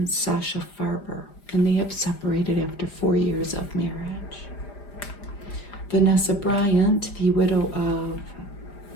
Sasha Farber, and they have separated after 4 years of marriage. Vanessa Bryant, the widow of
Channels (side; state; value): right; late; 5.0 ms